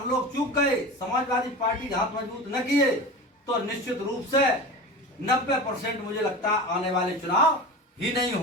लोग चूक गए, समाजवादी पार्टी के हाथ मजबूत न किए, तो निश्चित रूप से 90% मुझे लगता है आने वाले चुनाव ही नहीं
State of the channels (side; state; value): both; normal; correlation 0.30